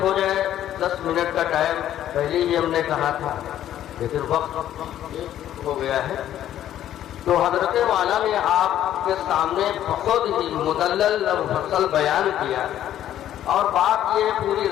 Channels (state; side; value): quieter; right; 11.7 dB